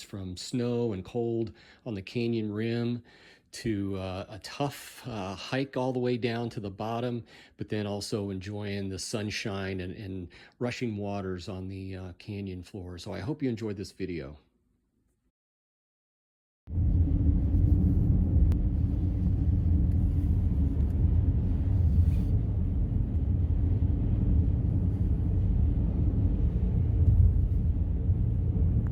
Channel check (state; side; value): identical; both; correlation 1.00